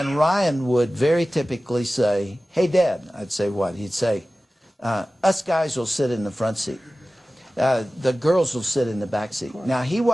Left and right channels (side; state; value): both; normal; correlation 0.96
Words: Ryan would very typically say, "Hey, Dad." I'd say, "What?" He'd say, "Us guys will sit in the front seat. The girls will sit in the back seat." Now, he